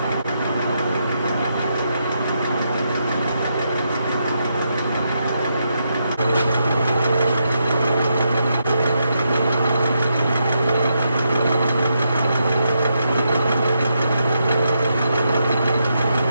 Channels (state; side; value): inverted; both; correlation -0.82